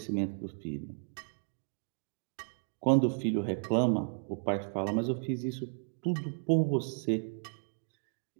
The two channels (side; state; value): left; silent; 55 dB below the other